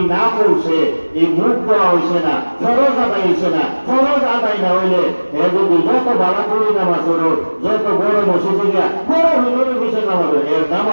না পৌঁছে, এই মুখ দেওয়া হয়েছে না, ফরজ আদায় হয়েছে না, ফরজ আদায় না হইলে এ যদি যত বালা করি নামাজ হলো, যত বড় মসজিদে গিয়া বড় হিন্দুর বিষয় নামাজ এর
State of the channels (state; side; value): inverted; both; correlation -1.00